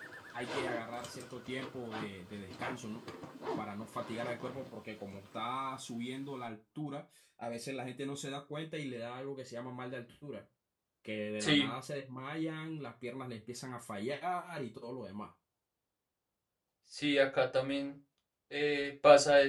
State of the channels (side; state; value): both; identical; correlation 1.00